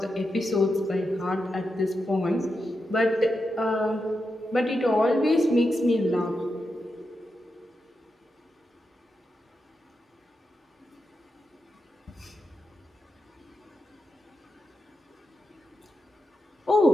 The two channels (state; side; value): normal; both; correlation 0.87